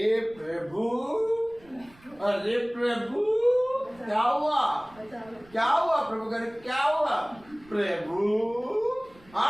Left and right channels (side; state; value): right; noise; rumble, 26 dB below the sound